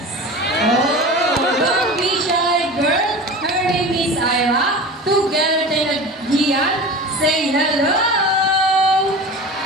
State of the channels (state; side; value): normal; both; correlation 0.33